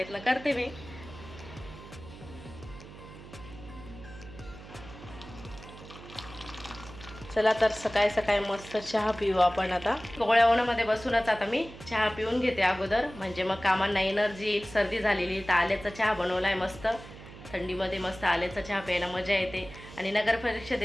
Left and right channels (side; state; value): right; noise; hum, 16 dB below the sound